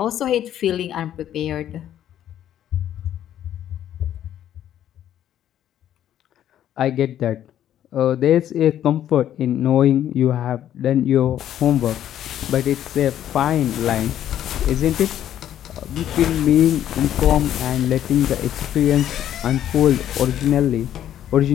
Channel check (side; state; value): right; quieter; 11.1 dB